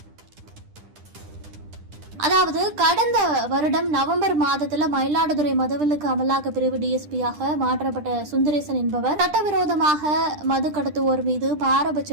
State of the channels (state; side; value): late; left; 10 ms